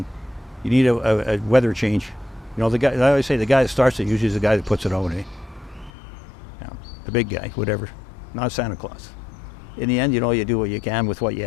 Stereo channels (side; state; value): right; drops out; at 5.9 s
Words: You need a weather change. You know, the guy, I always say the guy that starts it usually is the guy that puts it out, eh? Yeah, the big guy, whatever, not Santa Claus. In the end, you know, you do what you can with what you